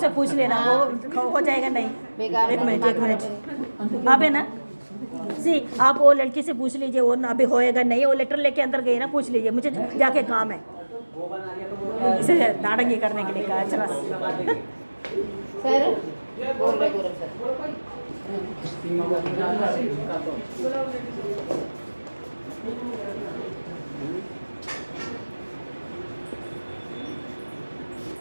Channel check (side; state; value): both; inverted; correlation -1.00